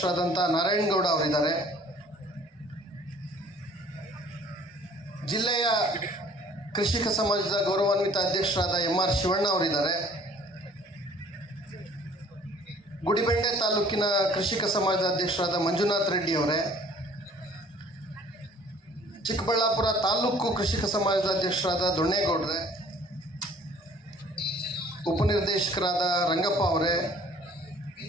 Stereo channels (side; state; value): both; normal; correlation 0.54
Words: ನಾರಾಯಣಗೌಡ ಅವರಿದ್ದಾರೆ. ಜಿಲ್ಲೆಯ ಕೃಷಿಕ ಸಮಾಜದ ಗೌರವಾನ್ವಿತ ಅಧ್ಯಕ್ಷರಾದ MR ಶಿವಣ್ಣ ಅವರಿದ್ದಾರೆ. ಗುಡಿಬೆಂಡೆ ತಾಲೂಕಿನ ಕೃಷಿಕ ಸಮಾಜದ ಅಧ್ಯಕ್ಷರಾದ ಮಂಜುನಾಥ್ ರೆಡ್ಡಿ ಅವರೇ, ಚಿಕ್ಕಬಳ್ಳಾಪುರ ತಾಲೂಕು ಕೃಷಿಕ ಸಮಾಜದ ಅಧ್ಯಕ್ಷರಾದ ದೊಣ್ಣೇಗೌಡ್ರೆ, ಉಪನಿರ್ದೇಶಕರಾದ ರಂಗಪ್ಪ ಅವರೇ,